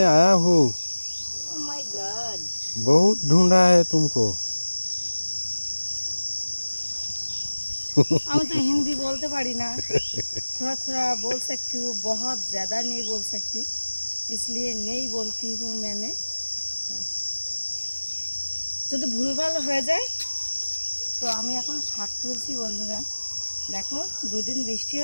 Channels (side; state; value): both; inverted; correlation -1.00